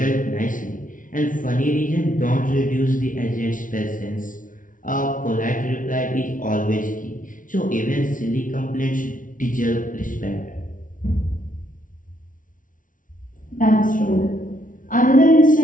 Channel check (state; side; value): late; right; 0.38 ms